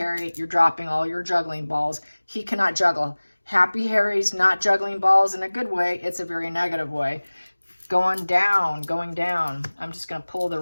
you're dropping all your juggling balls. He cannot juggle. Happy Harry's not juggling balls in a good way. It's a very negative way. Going down, going down. I'm just going to pull the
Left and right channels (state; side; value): inverted; both; correlation -1.00